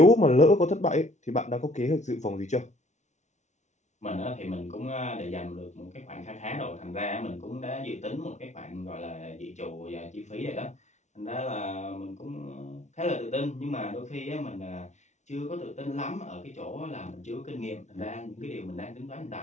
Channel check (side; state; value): right; late; 0.33 ms